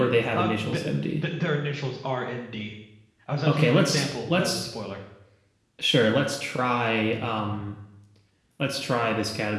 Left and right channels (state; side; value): identical; both; correlation 1.00